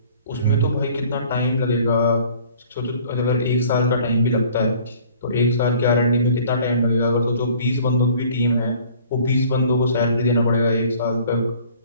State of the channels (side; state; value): both; inverted; correlation -0.53